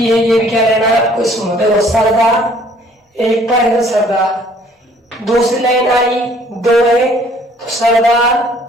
है, ये भी क्या लेना है आपको? स्मॉल। देखो, सरदार एक पर है तो सरदार, दूसरी लाइन आई 2 है तो सरदार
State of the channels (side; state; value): both; normal; correlation 0.58